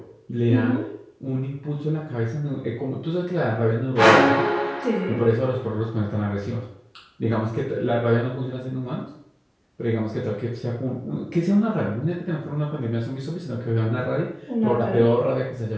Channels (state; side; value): identical; both; correlation 1.00